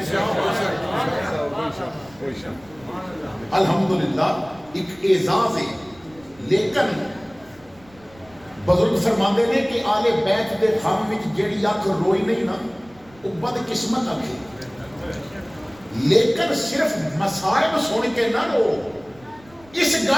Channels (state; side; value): noise; right; rumble, 26 dB below the sound